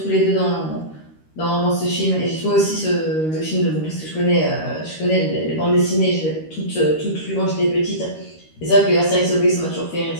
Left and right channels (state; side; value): late; right; 13 ms